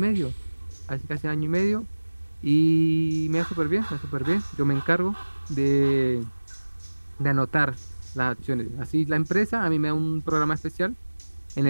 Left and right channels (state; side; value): inverted; both; correlation -1.00